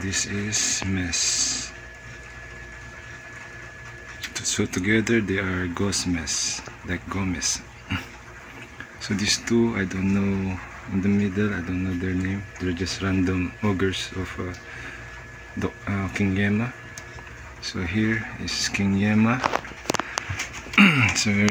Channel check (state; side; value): identical; both; correlation 1.00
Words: this is Mess. So together they are Ghost Mess, like Gomez. So these two, I don't know, in the middle, I don't know their name. They're just random ogres of King Yema. So here is King Yema. It's a